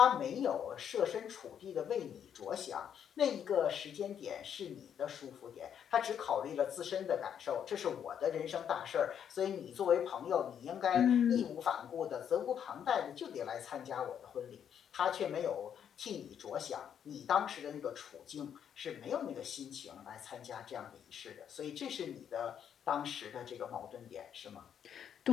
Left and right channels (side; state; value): right; quieter; 8.7 dB